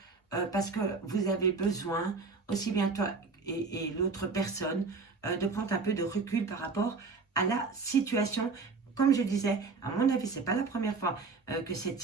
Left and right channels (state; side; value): quieter; left; 4.4 dB